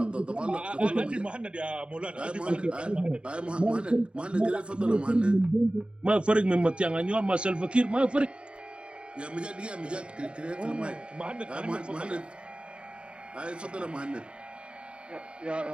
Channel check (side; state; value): left; late; 0.055 ms